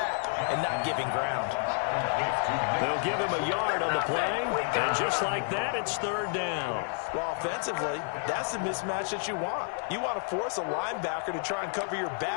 and not giving ground. They'll give him a yard on the play, and just like that, it's 3rd down. Well, offensively, that's the mismatch that you want. You want to force a linebacker to try and cover your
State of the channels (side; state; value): right; silent; 58 dB below the other